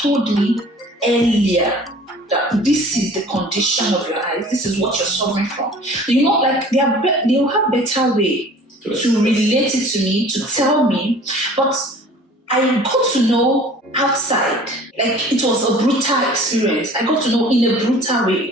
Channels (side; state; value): both; normal; correlation 0.47